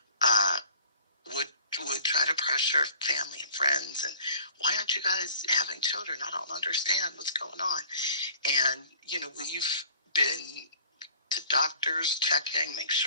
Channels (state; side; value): inverted; both; correlation -0.52